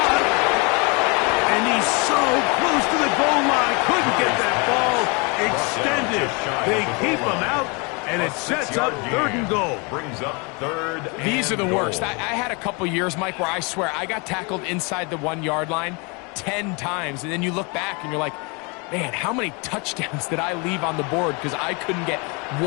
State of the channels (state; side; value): quieter; right; 30.7 dB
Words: And he's so close to the goal line. Couldn't get that ball extended. They keep him out, and it sets up third and goal. Brings up third. These are the worst. I had a couple years, Mike, where I swear I got tackled inside the 1 yard line 10 times, and then you look back and you're like, Man, how many touchdowns did I leave on the board because I couldn't get